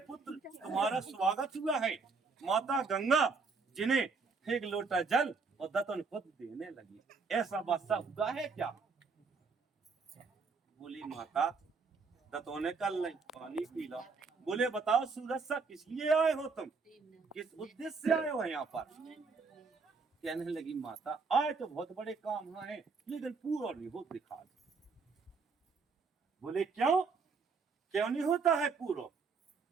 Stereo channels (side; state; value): left; quieter; 4.7 dB